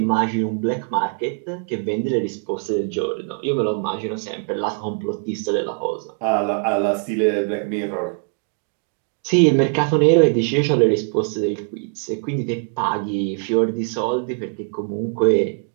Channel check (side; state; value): left; silent; 55 dB below the other